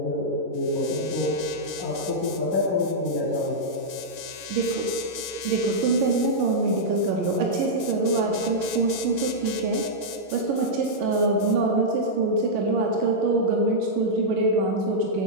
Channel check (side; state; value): left; late; 11 ms